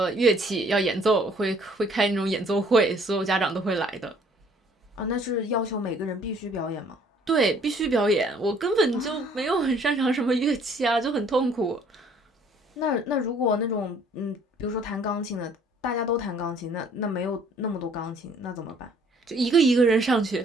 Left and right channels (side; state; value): both; normal; correlation 0.59